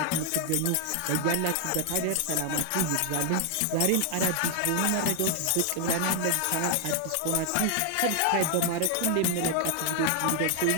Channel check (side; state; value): both; different; correlation 0.00